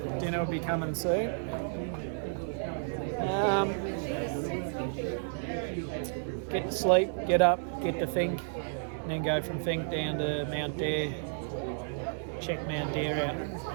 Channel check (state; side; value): silent; left; digital silence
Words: Dinner will be coming soon. Get to sleep, get up, get to Fink, and then go from Fink down to Mount Dare. Check Mount Dare